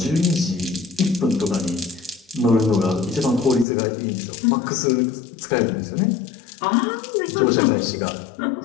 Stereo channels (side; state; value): right; drops out; at 3.7 s